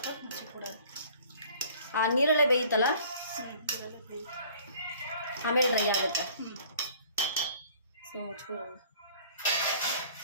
ಮುಚ್ಚಿ ಕೊಡೋದು. ಆ ನೀರಲ್ಲೇ ಬೇಯುತ್ತಲ್ಲ, ಆಮೇಲೆ ಡ್ರೈ ಆಗುತ್ತೆ. ಸೊ ಮುಚ್ಕೊಳ್ಳೋಣ.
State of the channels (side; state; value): both; inverted; correlation -0.52